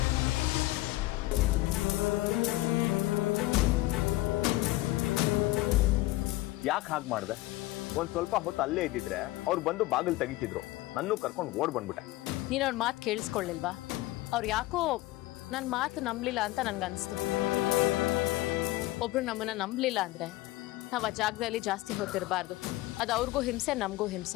ಯಾಕೆ ಹಾಗೆ ಮಾಡಿದೆ? ಒಂದ್ ಸ್ವಲ್ಪ ಹೊತ್ತು ಅಲ್ಲೇ ಇದ್ದಿದ್ರೆ ಅವ್ರು ಬಂದು ಬಾಗಿಲು ತೆಗಿತಿದ್ರು. ನನ್ನೂ ಕರ್ಕೊಂಡು ಓಡ್ ಬಂದ್ಬಿಟ್ಟೆ. ನೀನು ಅವ್ರ ಮಾತು ಕೇಳಿಸ್ಕೊಳ್ಳಿಲ್ವಾ? ಅವ್ರು ಯಾಕೋ ನನ್ನ ಮಾತು ನಂಬಲಿಲ್ಲ ಅಂತ ನನ್ಗನ್ಸ್ತು. ಒಬ್ರು ನಮ್ಮನ್ನ ನಂಬಲಿಲ್ಲ ಅಂದ್ರೆ ನಾವು ಆ ಜಾಗದಲ್ಲಿ ಜಾಸ್ತಿ ಹೊತ್ತಿರಬಾರ್ದು. ಅದು ಅವ್ರಿಗೂ ಹಿಂಸೆ, ನಮಗೂ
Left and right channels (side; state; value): right; quieter; 18.4 dB